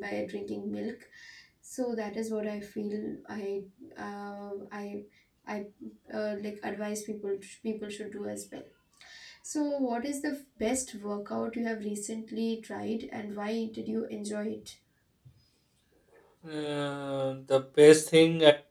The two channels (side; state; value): both; identical; correlation 1.00